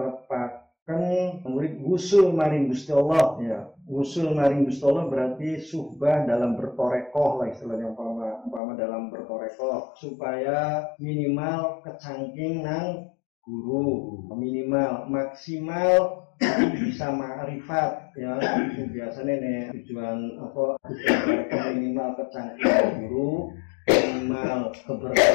kan murid wusul maring Gusti Allah, ya. Wusul maring Gusti Allah berarti suhbah dalam bertorekoh lah istilahnya, umpama dalam bertorekoh, supaya minimal kecangking nang guru, minimal maksimal bisa ma'rifat, ya. Itu biasanya nih tujuan minimal kecangking guru, minimal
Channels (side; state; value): right; drops out; at 8.6 s